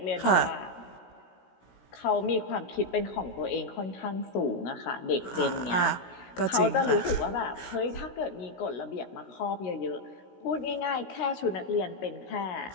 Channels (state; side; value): late; right; 16 ms